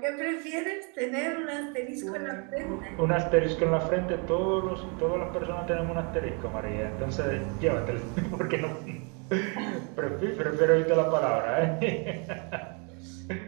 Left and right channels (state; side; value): quieter; left; 35.2 dB